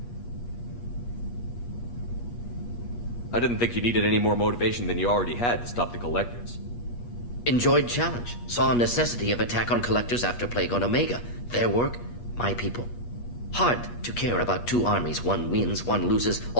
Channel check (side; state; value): right; late; 8.4 ms